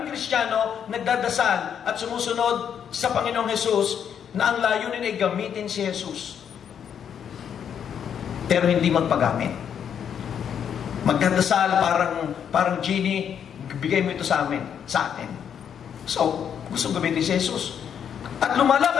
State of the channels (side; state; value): right; quieter; 8.3 dB